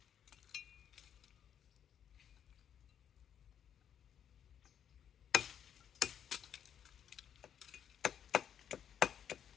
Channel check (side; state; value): right; quieter; 9.0 dB